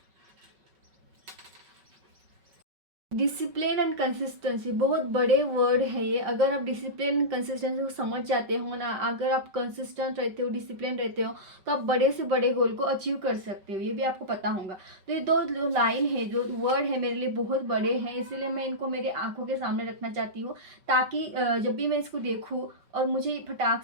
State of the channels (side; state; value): left; late; 5.2 ms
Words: डिसिप्लिन एंड कंसिस्टेंसी बहुत बड़े वर्ड है ये। अगर आप डिसिप्लिन एंड कंसिस्टेंसी को समझ जाते हो ना, अगर आप कंसिस्टेंट रहते हो, डिसिप्लिन रहते हो, तो आप बड़े से बड़े गोल को अचीव कर सकते हो। ये भी आपको पता होगा। तो ये 2 लाइन है, जो वर्ड है, मेरे लिए बहुत बड़े हैं, इसीलिए मैं इनको मेरे आंखों के सामने रखना चाहती हूँ, ताकि जब भी मैं इसको देखूँ और मुझे फटाक